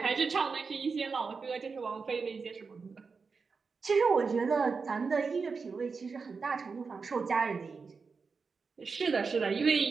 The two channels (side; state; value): left; quieter; 4.9 dB